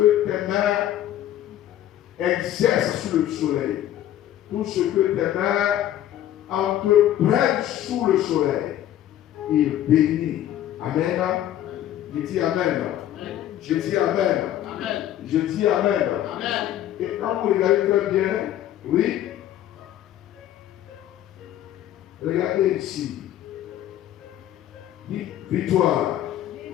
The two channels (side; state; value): right; quieter; 12.2 dB